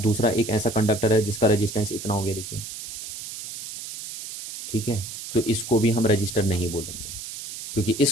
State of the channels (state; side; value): noise; right; hiss, 9 dB below the sound